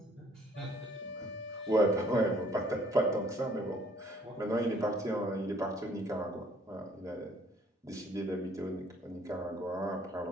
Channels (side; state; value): both; normal; correlation 0.60